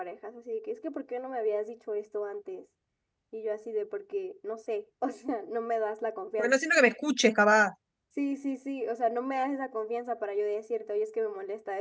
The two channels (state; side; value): identical; both; correlation 1.00